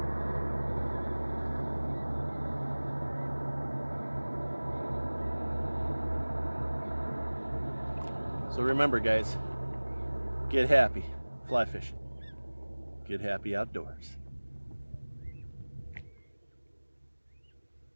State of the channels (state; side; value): inverted; both; correlation -1.00